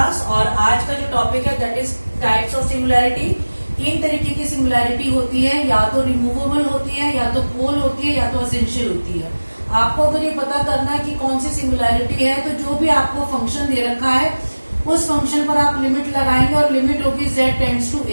और आज का जो topic है that is types of singularity. तीन तरीके की singularity होती है, या तो रिमूवेबल होती है, या तो पोल होती है, या तो एसेंशियल होती है। आपको अगर ये पता करना है कि कौन सी सिंगुलैरिटी है तो जो भी आपको फंक्शन दे रखा है उस फंक्शन पर आप लिमिट लगाएंगे और लिमिट होगी z टेंड्स टू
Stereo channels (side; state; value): both; inverted; correlation -1.00